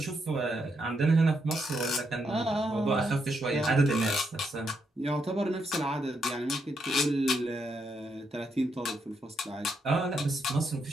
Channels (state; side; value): normal; both; correlation 0.79